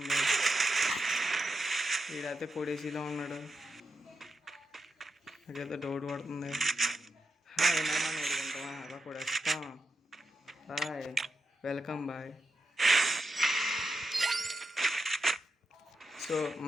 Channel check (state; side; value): normal; both; correlation 0.87